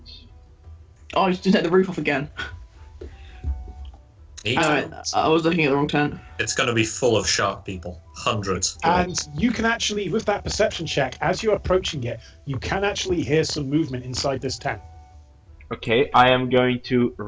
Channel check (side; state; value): both; identical; correlation 1.00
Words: Oh, I just take the roof off again. I was looking at the wrong tent. It's going to be full of shark people. Hundreds. And you can actually, with that perception check, as you're approaching it, you can actually hear some movement inside this tent. Okay, I am going to